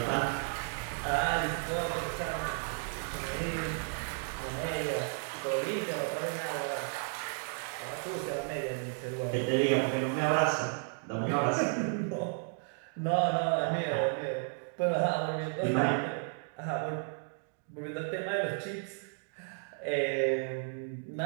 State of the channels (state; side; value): silent; left; 56 dB below the other